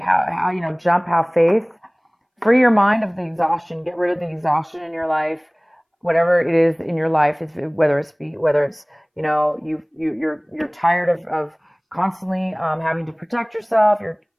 you know, have faith, free your mind of the exhaustion, get rid of the exhaustion in your life, whatever it is in your life, whether it's you know, you're tired of constantly having to protect yourself, you're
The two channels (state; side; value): identical; both; correlation 1.00